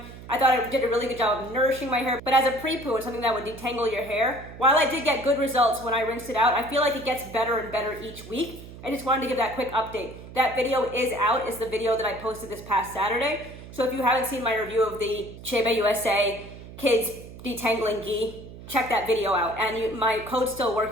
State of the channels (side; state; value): right; noise; hum, 15 dB below the sound